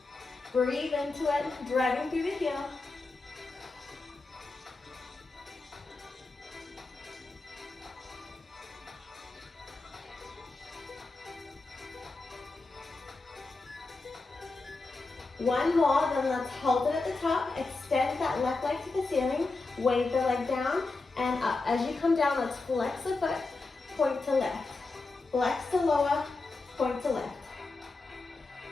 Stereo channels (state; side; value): quieter; right; 3.6 dB